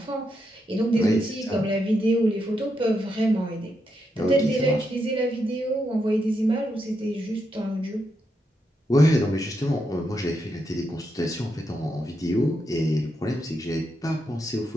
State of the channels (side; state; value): both; normal; correlation 0.82